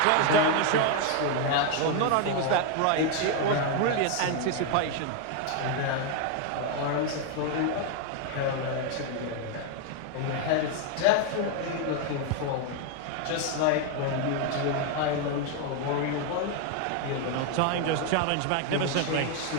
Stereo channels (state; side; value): different; both; correlation 0.01